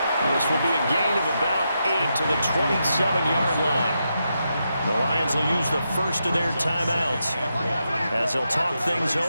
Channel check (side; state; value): both; inverted; correlation -0.85